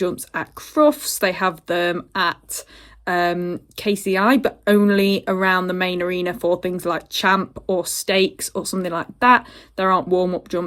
at Crufts, they have them at KCI, but only around the main arena for things like Champ or Stakes or something like that. There aren't warm-up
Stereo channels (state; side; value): identical; both; correlation 1.00